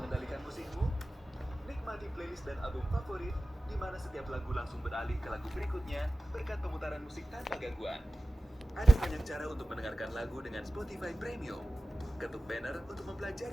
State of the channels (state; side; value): normal; both; correlation 0.96